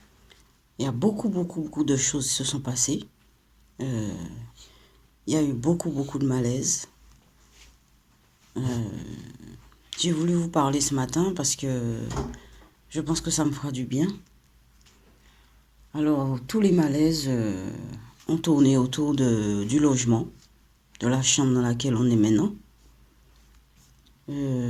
Il y a beaucoup de choses qui se sont passées. Euh, il y a eu beaucoup de malaise. J'ai voulu vous parler ce matin parce que je pense que ça me fera du bien. Alors, tous les malaises ont tourné autour du logement, de la chambre dans laquelle on est maintenant.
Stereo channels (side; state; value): both; identical; correlation 1.00